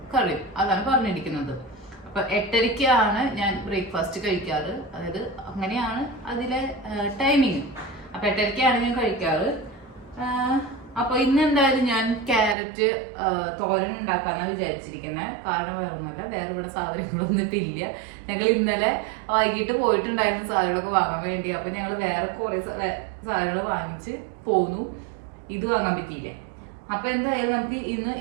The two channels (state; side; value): drops out; left; at 12.6 s